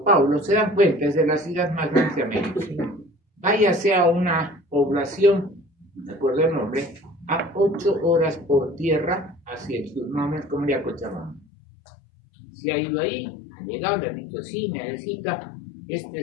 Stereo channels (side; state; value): right; drops out; at 11.5 s